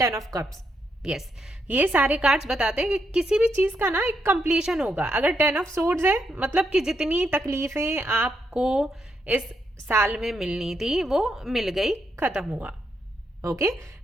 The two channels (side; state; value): both; normal; correlation 0.79